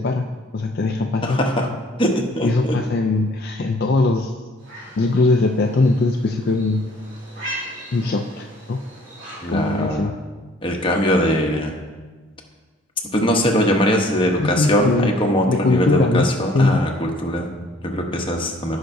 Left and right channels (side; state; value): both; normal; correlation 0.58